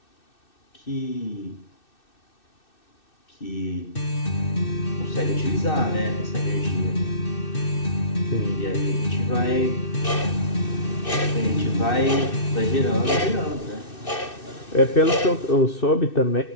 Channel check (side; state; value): right; late; 2.6 ms